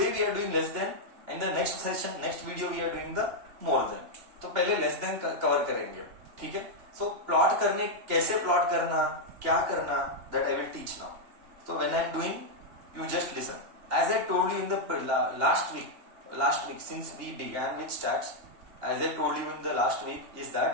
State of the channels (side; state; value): left; late; 2.8 ms